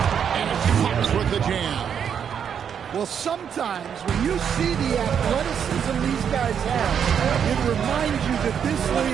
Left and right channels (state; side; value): quieter; left; 7.9 dB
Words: And Fox with the jam. Well, sometimes when you see the athleticism these guys have, it reminds you that this